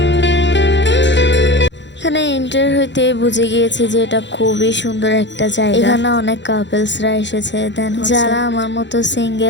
এখানে এন্টার হইতে বুঝে গিয়েছি যে এটা খুবই সুন্দর একটা জায়গা। এখানে অনেক কাপলসরা এসেছে, দেন যারা আমার মতো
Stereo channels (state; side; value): late; right; 0.52 ms